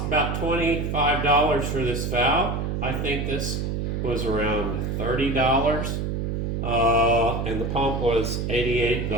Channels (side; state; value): right; noise; hum, 1 dB below the sound